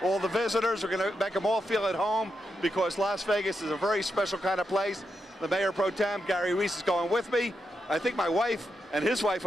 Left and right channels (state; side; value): normal; both; correlation 0.85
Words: all the visitors. We're going to make them all feel at home because Las Vegas is a very special kind of place. The Mayor Pro Tem, Gary Reese, is going with me. I think my wife and his wife